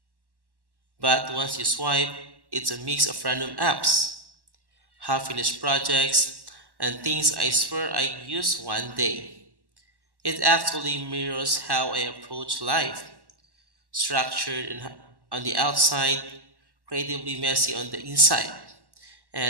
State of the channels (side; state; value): left; late; 1.1 ms